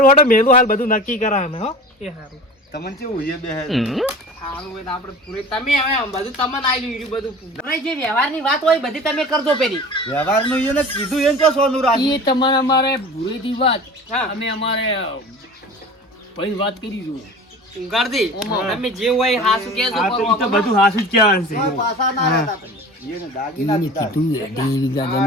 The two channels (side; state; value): both; normal; correlation 0.38